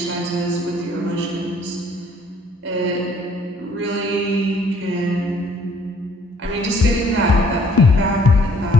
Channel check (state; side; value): normal; both; correlation 0.60